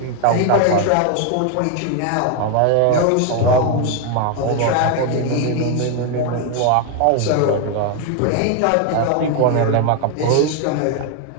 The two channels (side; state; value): both; different; correlation 0.01